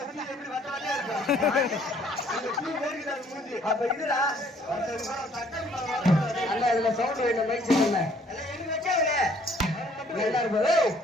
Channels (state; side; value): normal; both; correlation 0.61